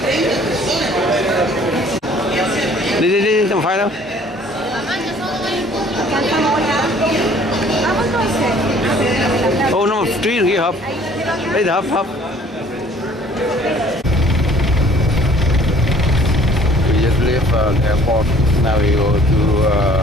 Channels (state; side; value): normal; both; correlation 0.55